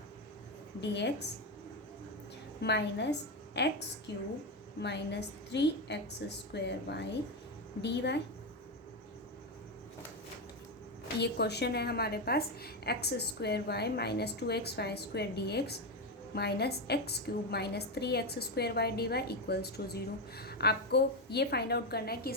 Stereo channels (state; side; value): normal; both; correlation 0.10